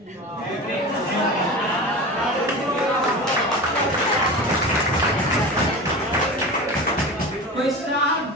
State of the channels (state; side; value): normal; both; correlation 0.30